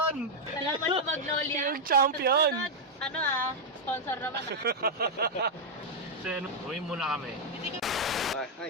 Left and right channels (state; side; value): normal; both; correlation -0.02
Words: Alam mo yung Magnolia. Yung champion! Susunod, ano sponsor naman So yun, uwi muna kami.